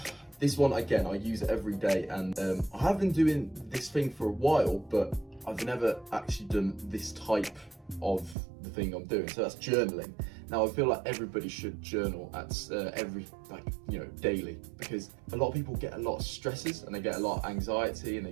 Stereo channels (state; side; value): drops out; left; at 8.3 s